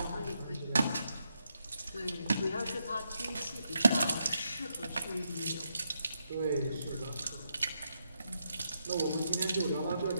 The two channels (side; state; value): both; inverted; correlation -0.81